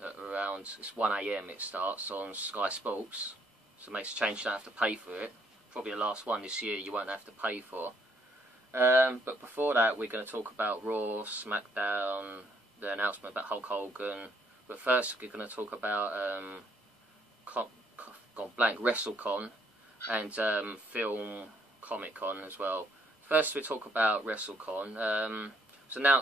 around, it's 1 AM it starts on Sky Sports. So it makes a change, you don't have to pay for it. Probably the last one this year you won't have to pay for. But before that we're going to talk about Raw, Smackdown, the announcement about Hulk Hogan. But first we're going to talk about WrestleCon and Film Comic Con as well. First we talk about WrestleCon. It was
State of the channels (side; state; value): both; normal; correlation 0.69